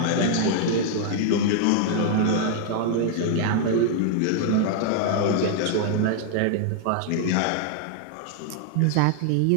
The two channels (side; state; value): both; different; correlation 0.00